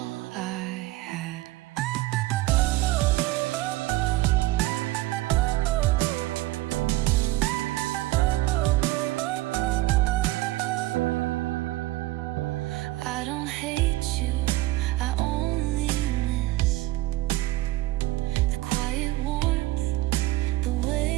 I had. I don't hate you, I only miss the quiet warmth, the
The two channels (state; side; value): quieter; left; 18.1 dB